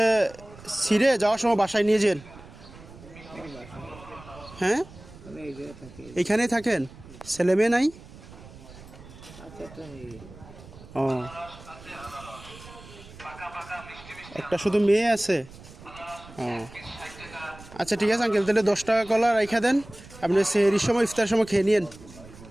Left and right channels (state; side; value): noise; right; rumble, 19 dB below the sound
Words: ছিঁড়ে যাওয়ার সময় বাসায় নিয়ে যান। হ্যাঁ, এইখানেই থাকেন? ছেলে মেয়ে নাই? ও, একটা শুধু মেয়ে আছে? ও আচ্ছা, ঠিক আছে আঙ্কেল, তাহলে 10 টাকা কলা রেখে দেন। আপনি সেহরির সময়, ইফতারের সময় খেয়ে নিন,